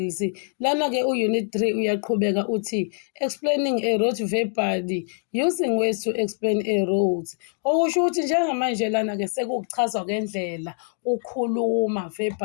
Lana-ke u-Unit 3 uyaqhubeka uthi explaining a route verbally using ways to explain a route. Okusho ukuthi njengamanje lana-ke sekukuchazwa kwendlela ukhuluma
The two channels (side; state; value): right; silent; digital silence